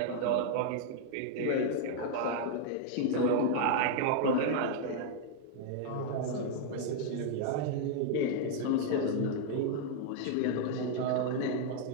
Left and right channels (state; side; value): different; both; correlation 0.00